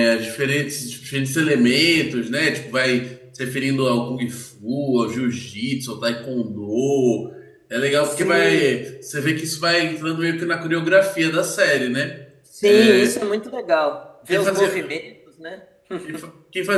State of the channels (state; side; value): identical; both; correlation 1.00